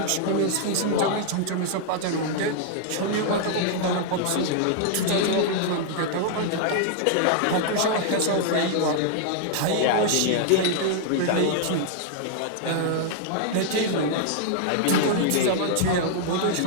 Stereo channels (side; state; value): both; different; correlation -0.01